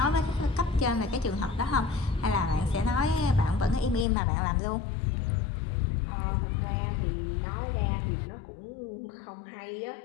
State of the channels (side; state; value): right; drops out; at 4.0 s